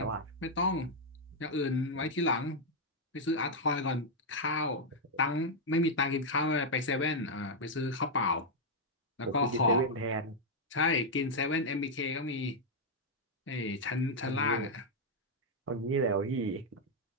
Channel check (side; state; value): both; normal; correlation -0.02